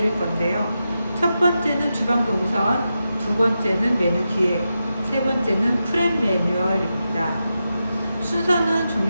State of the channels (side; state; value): both; inverted; correlation -0.89